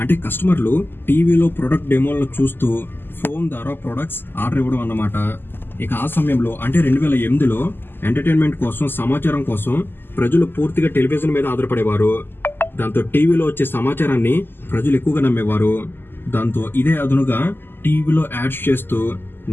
అంటే కస్టమర్లు టీవీలో ప్రొడక్ట్ డెమోలను చూస్తూ ఫోన్ ద్వారా ప్రొడక్ట్స్ ఆర్డర్ ఇవ్వడం అన్నమాట. ఇక ఆ సమయంలో అంటే 2008లో ఎంటర్టైన్మెంట్ కోసం, సమాచారం కోసం ప్రజలు పూర్తిగా టెలివిజన్ మీద ఆధారపడేవారు. దాంతో టీవీలో వచ్చే సమాచారాన్ని ప్రజలు ఎక్కువగా నమ్మేవారు. దాంతో ఇదే అదునుగా టీవీలో యాడ్స్ చేస్తూ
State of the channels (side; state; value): right; late; 0.099 ms